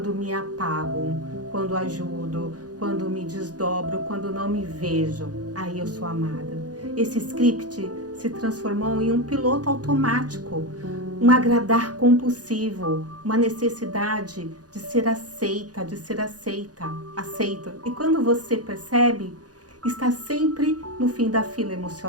me apago, quando ajudo, quando me desdobro, quando não me vejo. Aí eu sou amada. Esse script se transformou em um piloto automático, um agradar compulsivo, uma necessidade de ser aceita, aceito. E quando você percebe, está sempre no fim da fila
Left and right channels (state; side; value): late; left; 0.68 ms